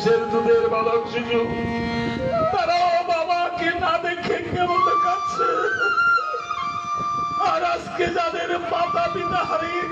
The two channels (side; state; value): both; identical; correlation 1.00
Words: দুধের বালক শিশু, তারাও বাবাকে না দেখে কেমন কাছে। আর আজকে যাদের মাতা পিতা হারিয়ে